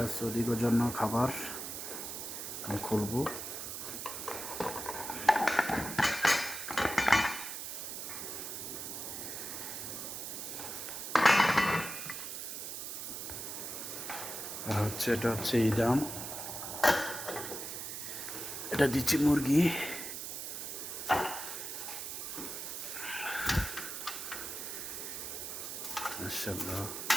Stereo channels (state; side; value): noise; right; hiss, 6 dB below the sound